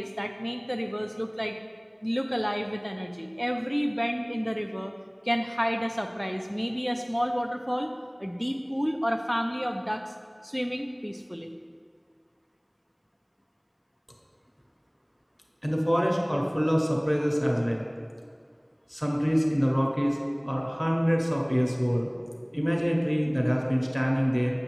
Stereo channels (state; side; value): identical; both; correlation 1.00